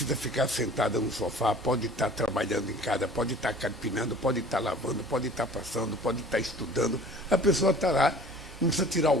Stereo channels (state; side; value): normal; both; correlation 0.47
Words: ficar sentada no sofá, pode estar trabalhando em casa, pode estar carpinando, pode estar lavando, pode estar passando, pode estar estudando. A pessoa está lá, não precisa tirar